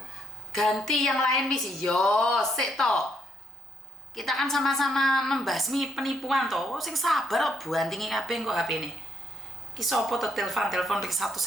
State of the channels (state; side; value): normal; both; correlation 0.71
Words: ganti yang lain misi. Yo, sik toh. Kita kan sama-sama membasmi penipuan toh. Sing sabar kok buantingi kabeh kok HP ini. Ki sapa to telepon iki